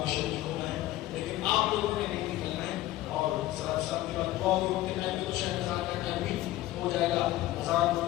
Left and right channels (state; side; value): quieter; right; 15.7 dB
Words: شریک ہونا ہے، لیکن آپ لوگوں نے نہیں نکلنا ہے. اور صاحب کے بعد دعا ہوتے ٹائم میں تو شاید اذان کا ٹائم بھی ہو جائے گا. اذان